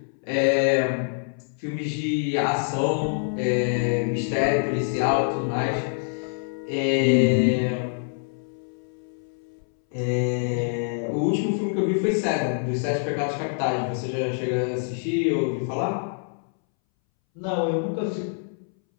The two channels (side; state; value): right; silent; 61 dB below the other